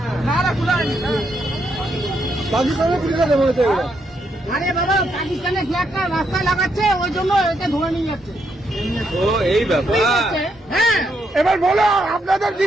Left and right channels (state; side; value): normal; both; correlation 0.78